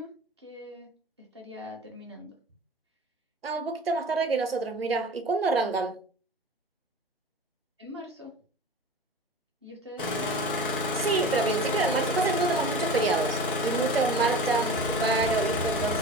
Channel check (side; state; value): both; normal; correlation 0.34